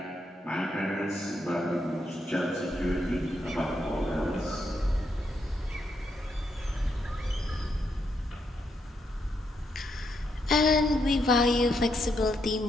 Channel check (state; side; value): normal; both; correlation 0.79